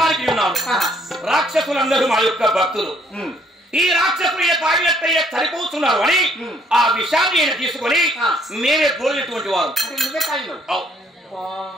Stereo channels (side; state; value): both; normal; correlation 0.64